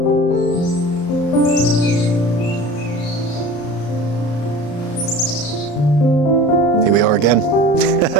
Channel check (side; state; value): right; late; 34 ms